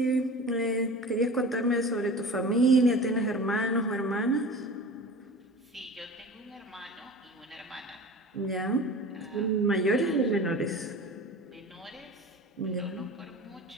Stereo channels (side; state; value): both; normal; correlation 0.37